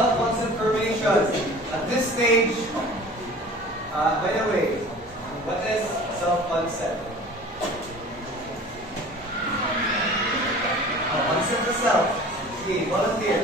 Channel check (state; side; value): normal; both; correlation 0.43